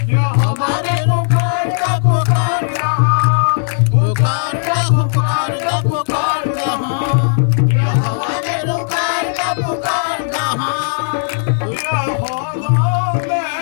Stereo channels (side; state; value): right; silent; digital silence